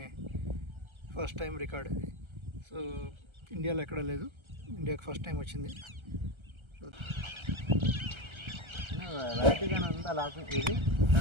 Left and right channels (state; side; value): late; left; 1.3 ms